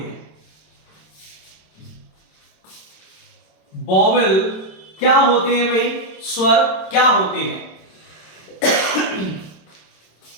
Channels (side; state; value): right; late; 26 ms